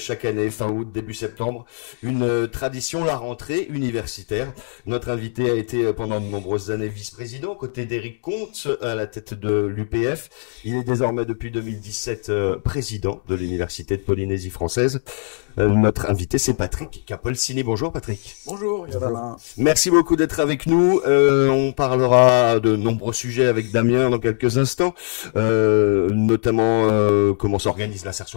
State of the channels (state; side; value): silent; right; digital silence